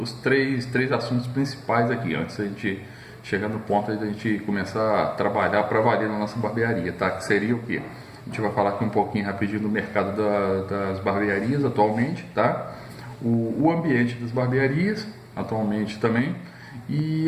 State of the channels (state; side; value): identical; both; correlation 1.00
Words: três assuntos principais aqui, antes da gente chegar no ponto da gente começar a trabalhar para valer na nossa barbearia, tá? Que seria o quê? A gente vai falar aqui um pouquinho rapidinho do mercado das barbearias atualmente, tá? O ambiente das barbearias atualmente também, e